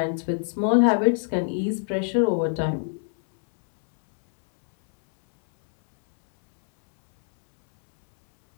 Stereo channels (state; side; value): silent; right; 63 dB below the other